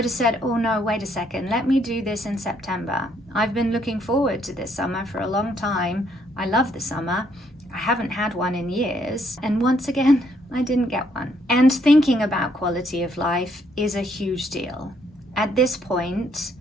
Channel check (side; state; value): both; normal; correlation 0.70